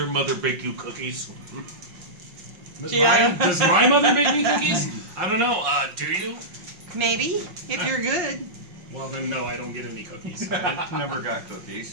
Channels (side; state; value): left; late; 5.6 ms